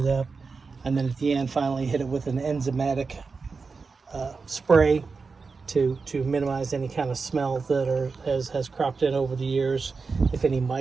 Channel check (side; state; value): left; quieter; 4.6 dB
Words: up. And then at the end, finally hit it with an enzymatic spray to minimize any kind of smell that has cropped in over the years. If any